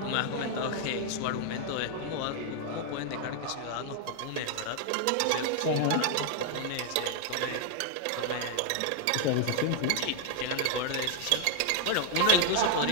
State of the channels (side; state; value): both; different; correlation 0.00